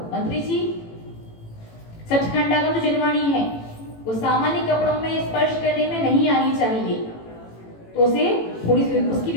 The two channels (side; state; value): right; late; 18 ms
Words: मंत्री जी, सचखंडागम जो जिनवाणी है वो सामान्य कपड़ों में स्पर्श करने में नहीं आनी चाहिए, तो उसे थोड़ी सी उसकी